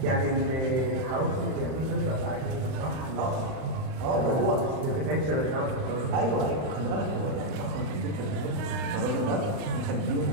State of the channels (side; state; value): left; late; 39 ms